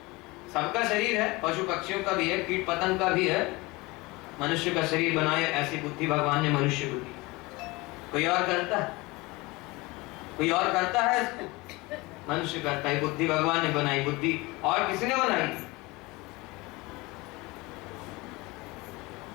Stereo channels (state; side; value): quieter; right; 23.1 dB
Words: सबका शरीर है, पशु पक्षियों का भी है, कीट पतंग का भी है, मनुष्य का शरीर बनाया। ऐसी बुद्धि भगवान ने मनुष्य को दी। कोई और करता है? कोई और करता है इसको? मनुष्य करता है। बुद्धि भगवान ने बनाई। बुद्धि और किसने बनाई?